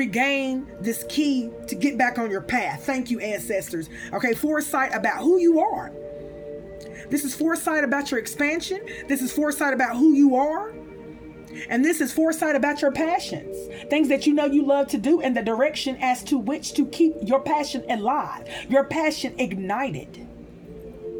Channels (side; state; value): both; identical; correlation 1.00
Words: this key to get back on your path. Thank you, ancestors. Okay, foresight about who you are. This is foresight about your expansion. This is foresight about who you are. And this is foresight about your passions. Things that you know you love to do, and the direction as to which to keep your passion alive. Your passion ignited.